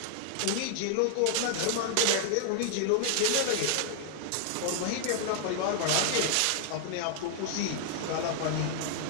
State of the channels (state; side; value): different; both; correlation -0.01